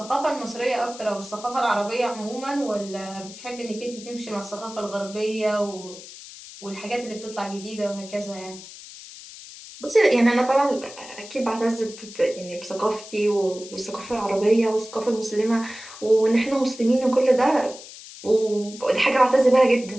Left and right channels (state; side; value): noise; left; hiss, 16 dB below the sound